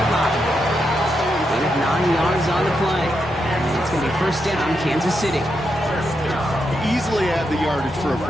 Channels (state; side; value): normal; both; correlation 0.83